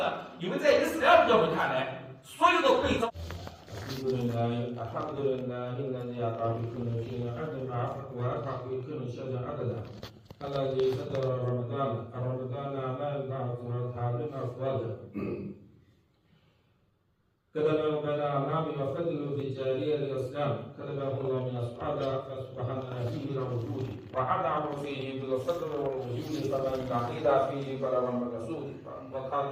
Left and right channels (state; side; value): identical; both; correlation 1.00